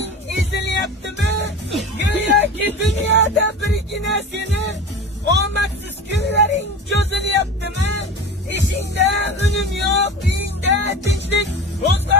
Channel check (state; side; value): normal; both; correlation 0.32